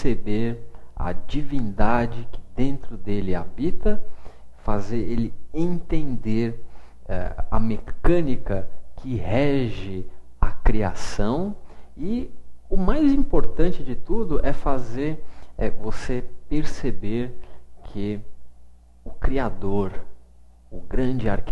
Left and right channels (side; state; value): both; identical; correlation 1.00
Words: a divindade que dentro dele habita, fazer ele entender a mecânica que rege a criação, e o mais importante de tudo é fazer você perceber que o Criador, o grande